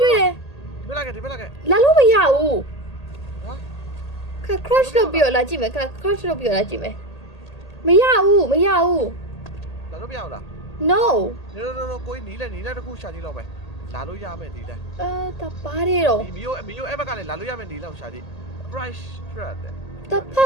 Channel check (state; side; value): late; right; 1.8 ms